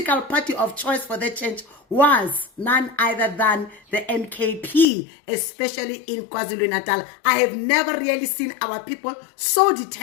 party of choice for the change was none other than the NKP, especially in KwaZulu-Natal. I have never really seen our people so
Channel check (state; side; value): drops out; right; at 4.9 s